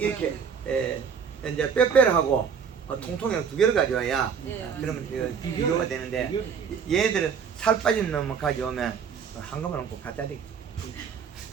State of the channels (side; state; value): left; quieter; 6.7 dB